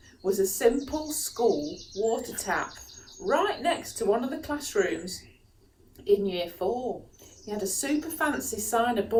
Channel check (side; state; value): both; identical; correlation 1.00